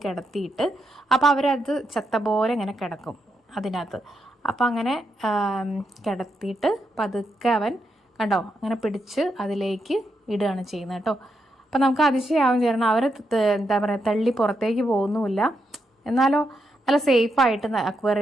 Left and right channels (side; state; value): both; normal; correlation 0.82